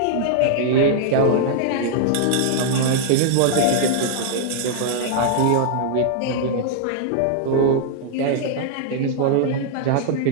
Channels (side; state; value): both; different; correlation -0.01